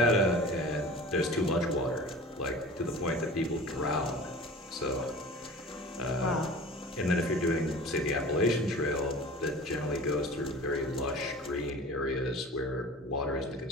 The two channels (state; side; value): normal; both; correlation 0.39